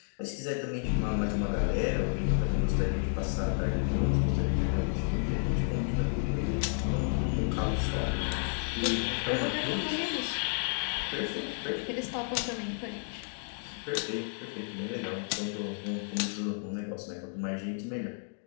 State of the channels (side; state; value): right; silent; 57 dB below the other